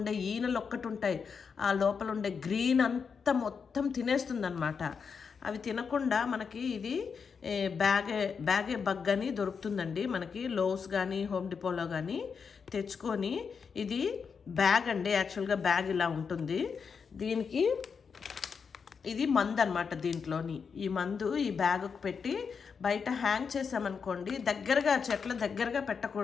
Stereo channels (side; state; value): right; quieter; 6.0 dB